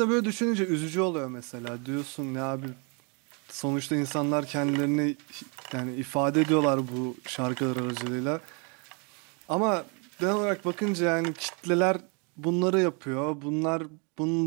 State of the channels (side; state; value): left; quieter; 34.8 dB